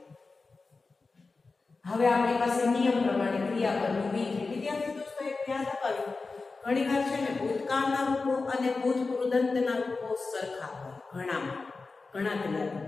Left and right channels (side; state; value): right; quieter; 4.0 dB